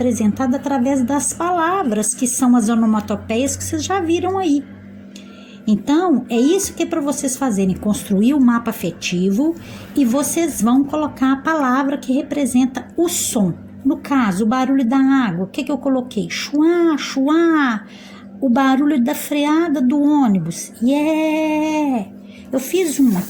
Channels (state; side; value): identical; both; correlation 1.00